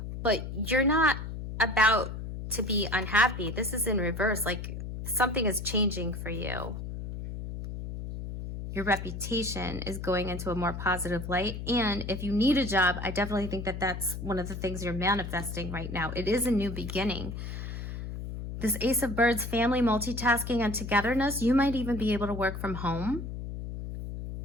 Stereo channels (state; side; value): noise; left; hum, 7 dB below the sound